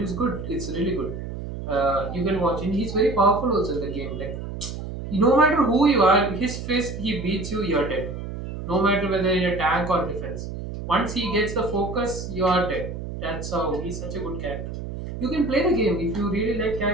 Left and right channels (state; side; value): noise; right; hum, 7 dB below the sound